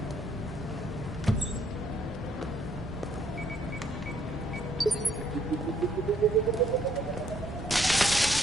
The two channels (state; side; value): normal; both; correlation 0.67